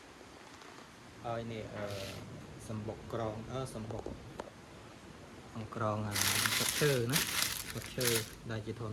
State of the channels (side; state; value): both; identical; correlation 1.00